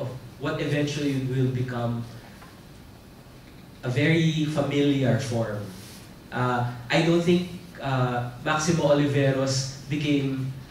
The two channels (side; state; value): both; identical; correlation 1.00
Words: what eventually will become a very familiar form. I don't think Maximo Oliveros became